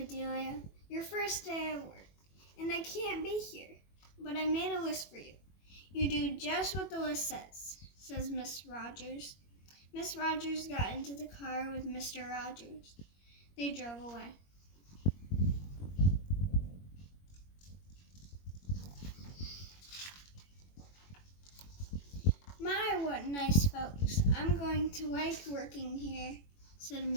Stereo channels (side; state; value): right; late; 21 ms